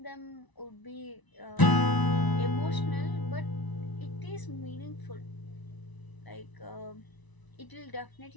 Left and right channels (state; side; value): late; right; 1.0 ms